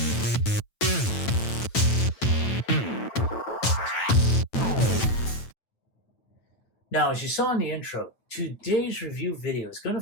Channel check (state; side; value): late; right; 9.0 ms